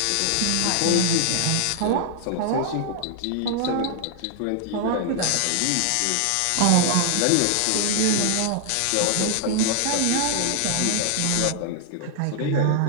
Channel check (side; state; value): both; different; correlation 0.00